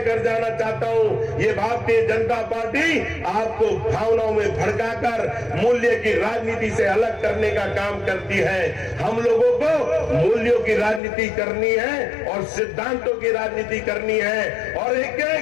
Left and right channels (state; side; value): drops out; right; at 11.0 s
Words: जाना चाहता हूं, ये भारतीय जनता पार्टी आपको भावनाओं में भड़काकर मूल्य की राजनीति से अलग करने का काम करती है। हम लोगों को मूल्यों की राजनीति करनी है और सिद्धांतों की राजनीति करनी है। और एक